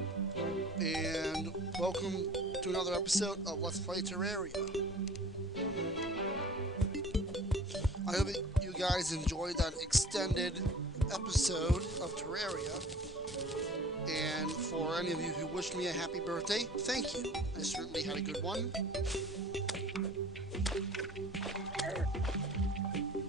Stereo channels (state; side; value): normal; both; correlation 0.45